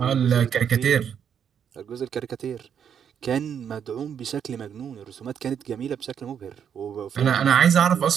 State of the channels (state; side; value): quieter; left; 8.2 dB